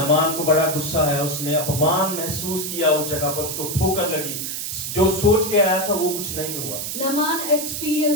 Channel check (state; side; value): noise; right; hiss, 4 dB below the sound